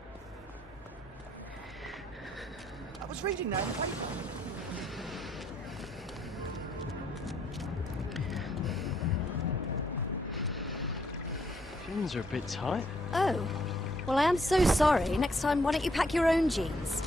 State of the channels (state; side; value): normal; both; correlation 0.70